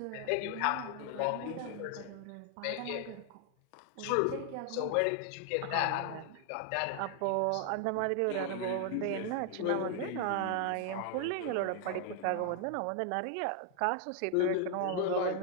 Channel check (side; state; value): both; different; correlation 0.00